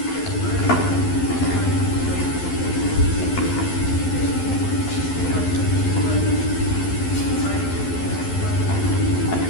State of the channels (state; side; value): late; right; 11 ms